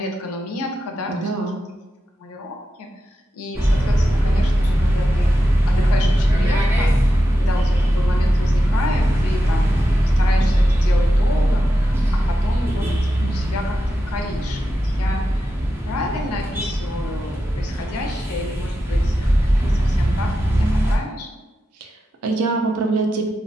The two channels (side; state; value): both; normal; correlation 0.90